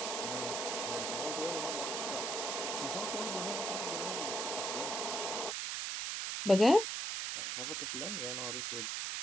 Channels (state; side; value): noise; right; hiss, 1 dB below the sound